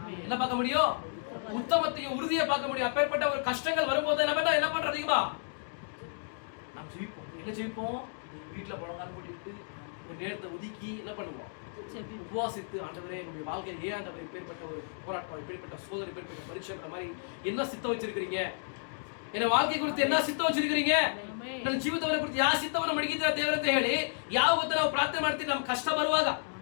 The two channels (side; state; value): right; silent; digital silence